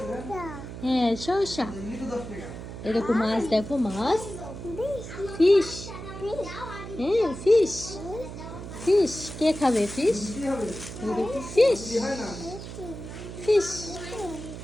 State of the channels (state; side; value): noise; right; hum, 10 dB below the sound